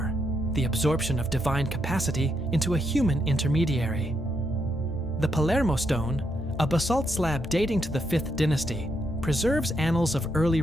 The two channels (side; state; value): both; normal; correlation 0.80